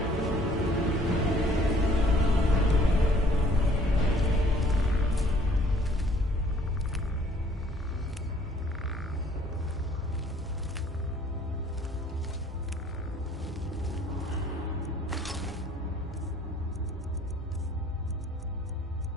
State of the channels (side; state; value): both; normal; correlation 0.58